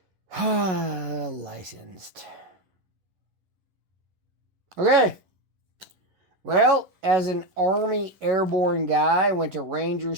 licensed. Okay. Well, as an Army airborne guy, went to Ranger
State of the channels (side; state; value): left; late; 11 ms